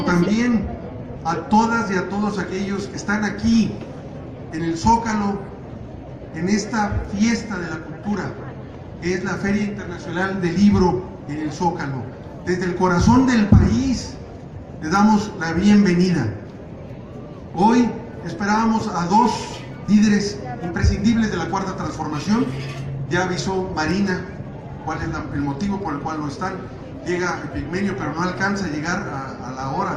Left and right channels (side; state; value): both; identical; correlation 1.00